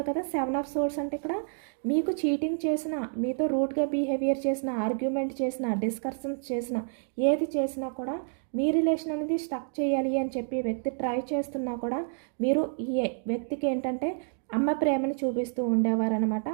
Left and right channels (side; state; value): left; silent; digital silence